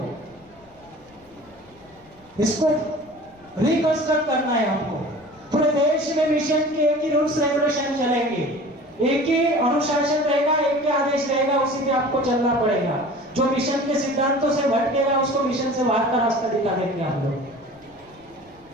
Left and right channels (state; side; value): noise; left; rumble, 29 dB below the sound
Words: इसको रिकंस्ट्रक्ट करना है हमको। पूरे देश में मिशन के एक ही रूल्स रेगुलेशन चलेंगे, एक ही अनुशासन रहेगा, एक ही आदेश रहेगा, उसी पे आपको चलना पड़ेगा। जो मिशन के सिद्धांतों से भटकेगा उसको मिशन से बाहर का रास्ता दिखा देंगे हम लोग।